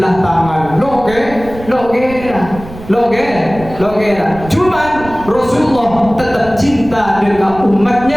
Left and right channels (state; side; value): noise; right; rumble, 15 dB below the sound